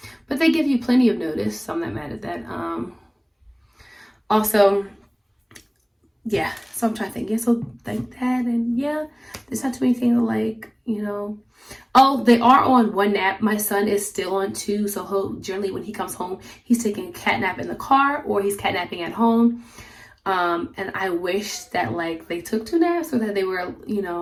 but they give you plenty of notice, so I'm not mad at that. Also, yeah, so I'm trying to think, yeah, so like that, and yeah, there's not too many things like, you know. Oh, they are on one nap. My son is still on 2, so he'll generally, when he comes home, he's taking a cat nap in the car or he's catnapping at home. And I wish that like they took 2 naps, or that they were, you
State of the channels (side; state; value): both; identical; correlation 1.00